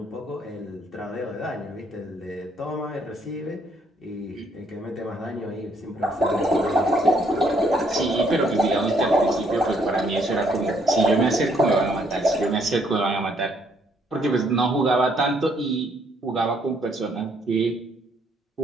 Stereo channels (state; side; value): normal; both; correlation 0.68